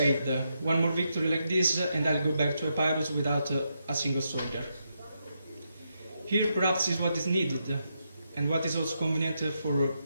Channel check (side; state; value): both; inverted; correlation -0.81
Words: one more victory like this and I'll go back to Epirus without a single soldier. Here perhaps is what is needed and what is also convenient for